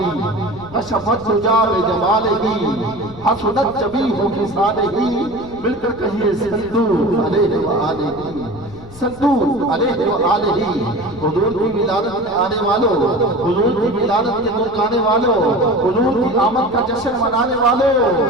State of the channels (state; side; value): noise; left; rumble, 18 dB below the sound